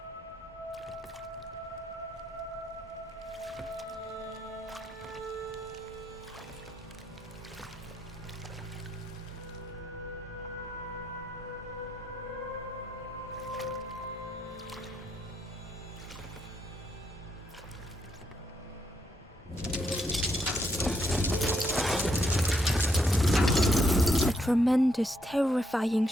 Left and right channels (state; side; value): normal; both; correlation 0.76